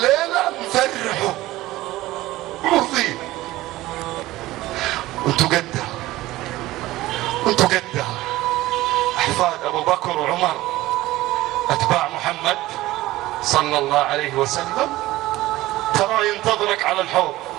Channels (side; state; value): left; quieter; 17.2 dB